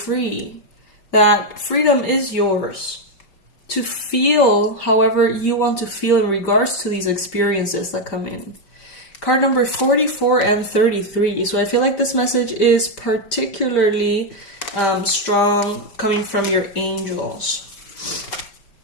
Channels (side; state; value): right; late; 5.1 ms